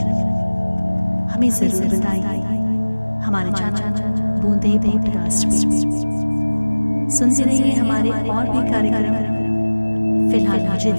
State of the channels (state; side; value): inverted; both; correlation -1.00